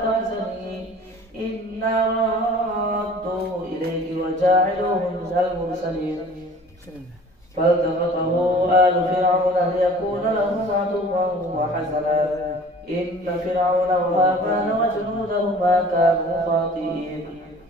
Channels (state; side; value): normal; both; correlation 0.46